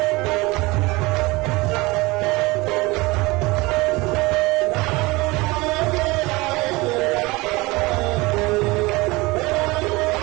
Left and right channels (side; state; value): left; quieter; 22.8 dB